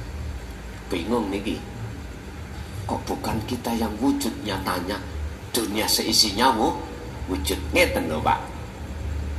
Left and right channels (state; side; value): identical; both; correlation 1.00